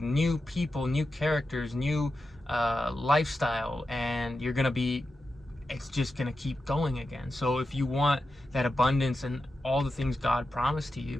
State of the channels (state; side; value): normal; both; correlation 0.90